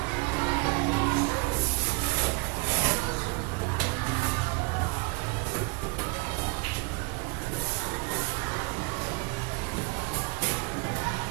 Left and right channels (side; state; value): left; quieter; 29.1 dB